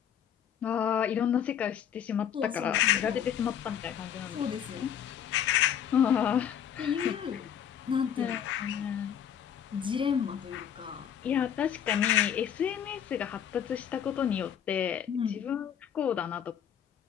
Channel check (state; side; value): quieter; right; 9.0 dB